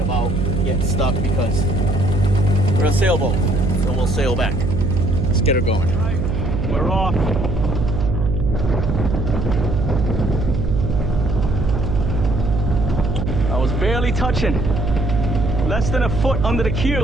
about getting stuck because we're a sailboat, so we'll sail back. Let's get her going. All right, we're off. I was barely touching, less than a foot under the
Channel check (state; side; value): noise; right; hum, 1 dB below the sound